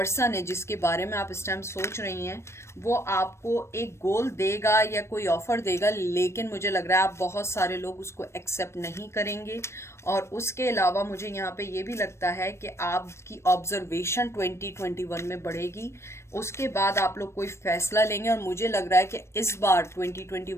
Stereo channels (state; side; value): late; right; 0.13 ms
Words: है जिसके बारे में आप इस टाइम सोच रही हैं, वो आपको एक गोल देगा या कोई ऑफर देगा, लेकिन मुझे लग रहा है आप बहुत सारे लोग उसको एक्सेप्ट नहीं करेंगे। और उसके अलावा मुझे यहाँ पे ये भी लगता है कि आपकी ऑब्जर्वेशन 2021 में बढ़ेगी, उसके बाद आप लोग कोई फैसला लेंगे। और मुझे लग रहा है कि इस बार